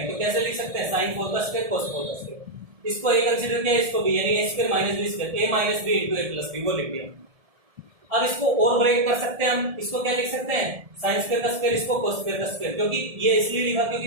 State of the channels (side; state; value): left; late; 1.7 ms